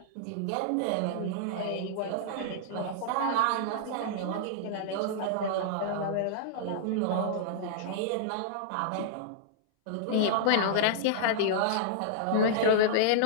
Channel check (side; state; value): both; different; correlation -0.01